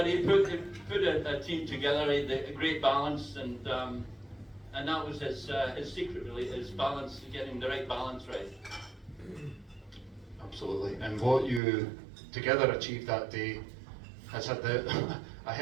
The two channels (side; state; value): left; drops out; at 11.6 s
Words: he put a team together, he had a great balance, and that was his secret, really, his balance, getting the right balance right. Absolutely, and what you together achieved that day has had a